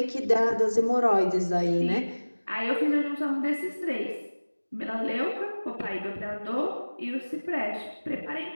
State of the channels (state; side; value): inverted; both; correlation -1.00